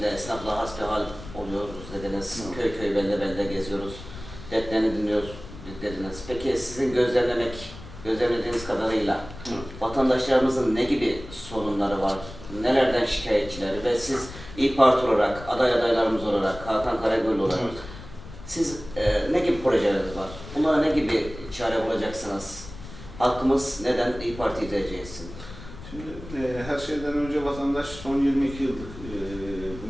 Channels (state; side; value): noise; left; rumble, 14 dB below the sound